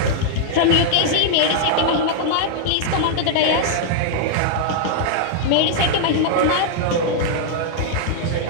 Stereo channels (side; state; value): both; different; correlation -0.01